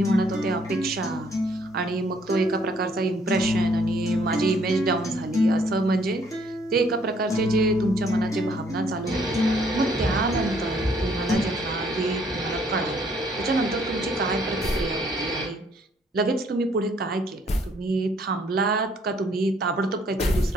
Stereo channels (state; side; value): normal; both; correlation 0.65